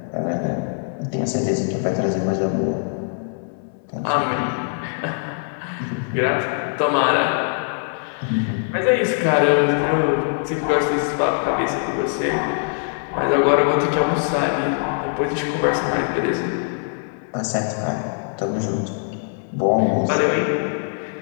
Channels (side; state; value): right; silent; 64 dB below the other